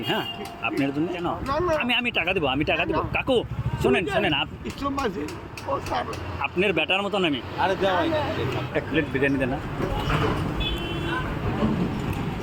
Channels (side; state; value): both; identical; correlation 1.00